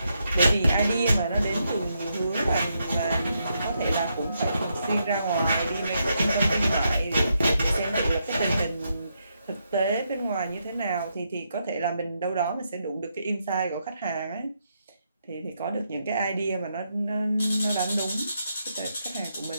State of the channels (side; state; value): both; inverted; correlation -0.80